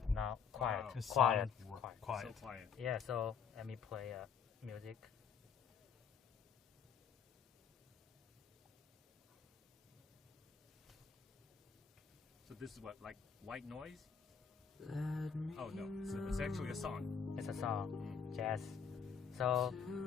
Now, quiet. Wow. It's Quiet. silent. Quiet. Quiet. So quiet. Yeah, so let me play music. So this is what, like white noise? Oh no, it's actually a song. It's a song, jazz. So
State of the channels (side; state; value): right; quieter; 6.4 dB